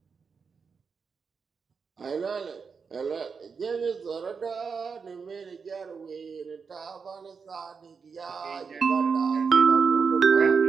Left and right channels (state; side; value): quieter; left; 5.5 dB